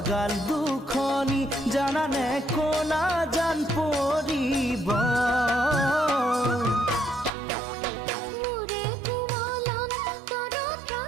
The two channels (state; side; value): drops out; left; at 7.3 s